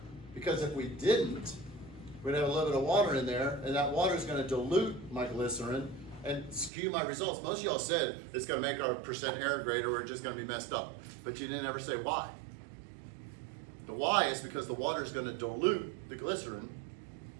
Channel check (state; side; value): drops out; left; at 6.7 s